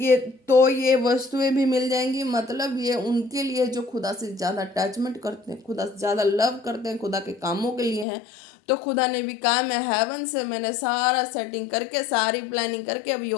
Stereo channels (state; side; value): drops out; right; at 8.1 s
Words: ये वस्तुएं भी मिल जाएंगी। मतलब ये उनके लिए जो खुदा से ज़्यादा अटैचमेंट करते हैं, खुदा से ज़्यादा लव करते हैं, खुदा के कामों के लिए हैं। तो खुदा ने भी कहा, मैं हेवन से मैंने सारा सेटिंग करके, सारी प्लानिंग करके, अब